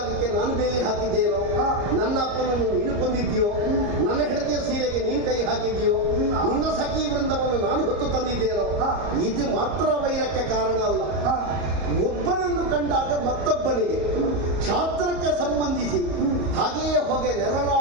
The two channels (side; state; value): left; late; 34 ms